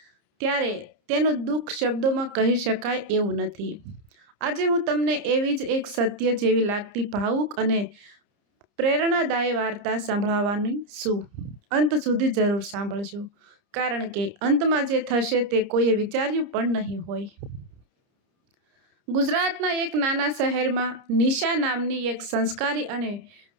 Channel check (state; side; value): late; left; 30 ms